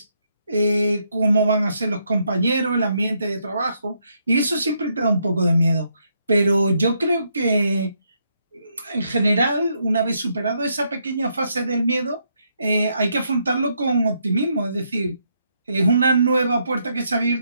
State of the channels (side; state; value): both; inverted; correlation -0.76